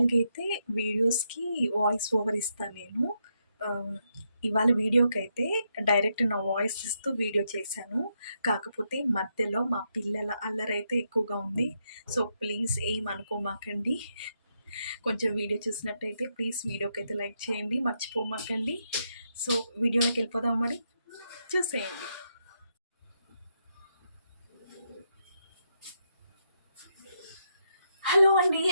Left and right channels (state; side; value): inverted; both; correlation -0.80